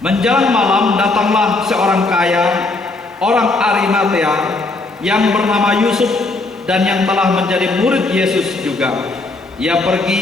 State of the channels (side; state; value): right; quieter; 3.3 dB